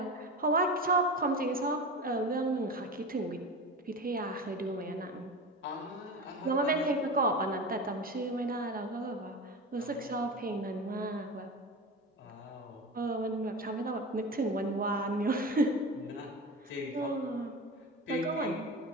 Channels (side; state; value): both; normal; correlation 0.28